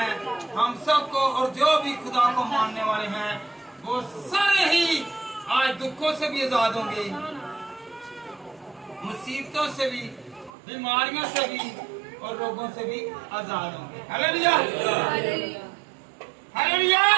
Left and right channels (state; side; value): drops out; left; at 10.5 s